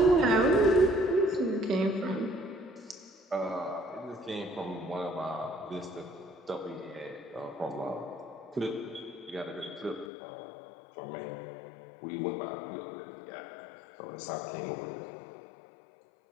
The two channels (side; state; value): right; drops out; at 10.1 s